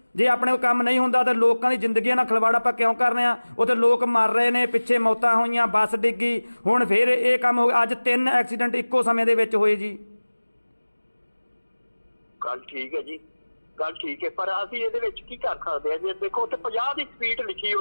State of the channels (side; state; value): both; inverted; correlation -1.00